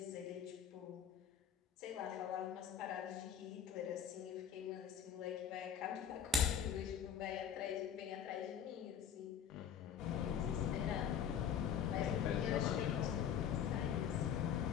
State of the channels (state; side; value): quieter; right; 8.5 dB